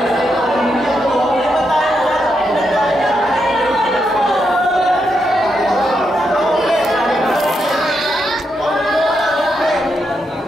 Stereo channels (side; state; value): both; normal; correlation 0.82